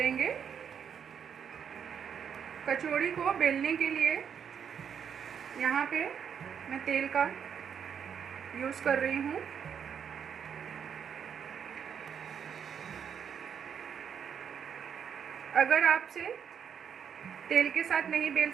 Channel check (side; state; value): left; quieter; 7.7 dB